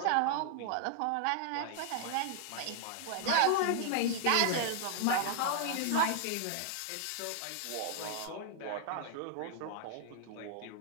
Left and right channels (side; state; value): both; different; correlation 0.00